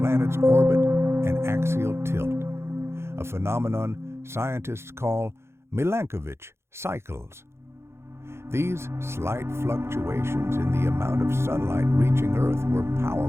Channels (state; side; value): late; left; 0.12 ms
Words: orbit and axial tilt, a phenomenon scientists call Milankovitch cycles. These slight fluctuations in the amount of sunlight reaching Earth were